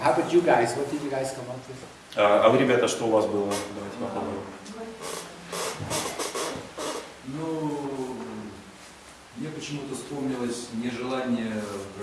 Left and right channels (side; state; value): both; identical; correlation 1.00